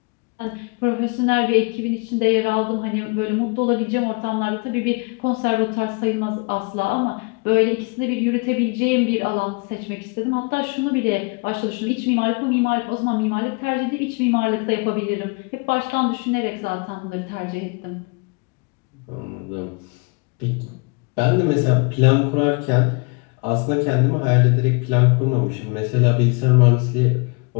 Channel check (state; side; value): quieter; right; 31.3 dB